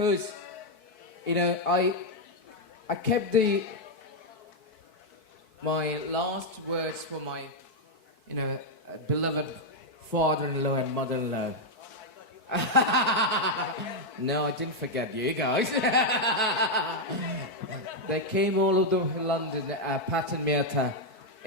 you know, I kept my last words for my, you know, beloved father-in-law and mother-in-law. No, I didn't forget you guys. They came all over London, Pat and Mirta.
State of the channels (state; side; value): late; right; 4.6 ms